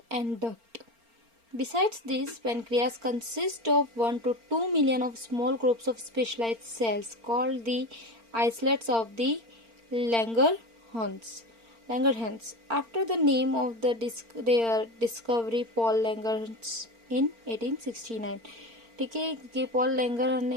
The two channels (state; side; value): late; left; 4.4 ms